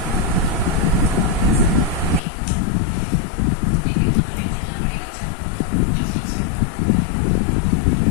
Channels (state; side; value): drops out; right; at 2.2 s